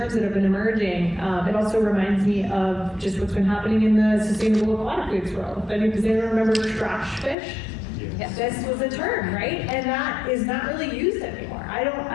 that have been emerging. It also reminds me of just what's been happening in the sustainable aquatic foods world. Does anyone remember trash fish? Yes. This was a term, right? And that is not really used anymore. I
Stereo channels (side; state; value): right; drops out; at 7.4 s